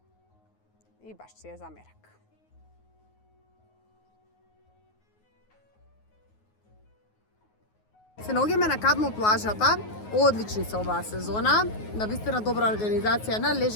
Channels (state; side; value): late; right; 9.4 ms